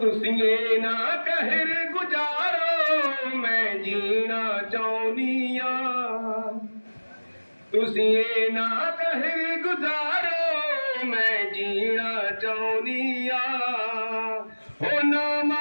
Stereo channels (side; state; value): both; inverted; correlation -1.00